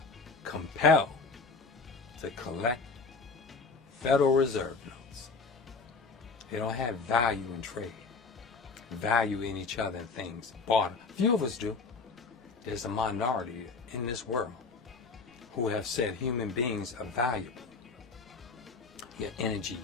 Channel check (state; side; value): quieter; right; 4.3 dB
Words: compelled to collect Federal Reserve notes. They don't have value in trade, value in each other and things. Barter. Few of us do. There's a minority in this world who have said human beings are valuable. Your energy,